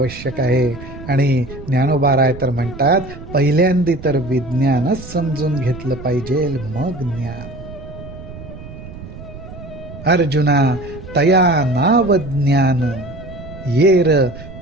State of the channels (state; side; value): noise; right; rumble, 14 dB below the sound